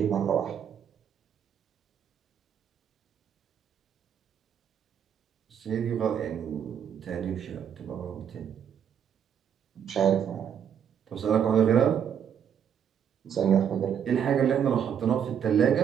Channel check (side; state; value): left; quieter; 8.4 dB